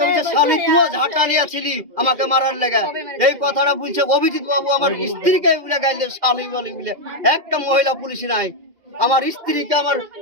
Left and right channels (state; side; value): late; left; 2.4 ms